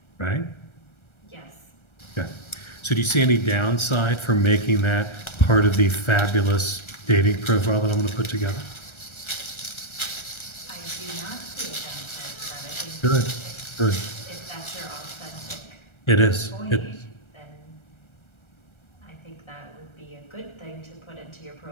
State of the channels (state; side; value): late; right; 1.3 ms